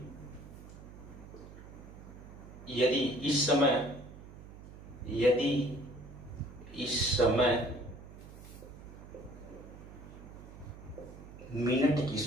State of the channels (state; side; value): noise; right; hum, 16 dB below the sound